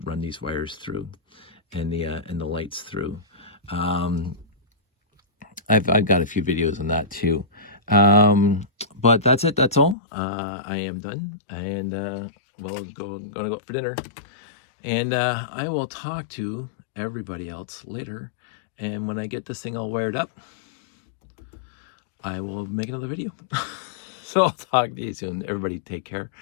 run these wires through, and the lights through. I've got a few videos on that too. But that's it. That's all. I am done, and gonna go out for dinner, and I will talk to everybody else later. And when I get this thing all wired up, I will make another video. So I'll talk to you soon. Everybody take care.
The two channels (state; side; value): drops out; right; at 10.0 s